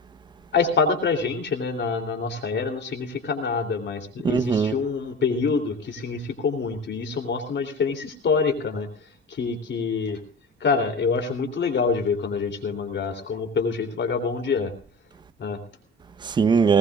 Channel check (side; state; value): both; normal; correlation 0.33